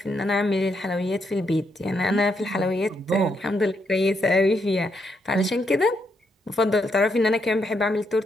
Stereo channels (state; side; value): normal; both; correlation 0.78